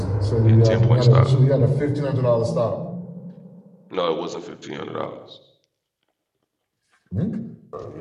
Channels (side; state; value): both; identical; correlation 1.00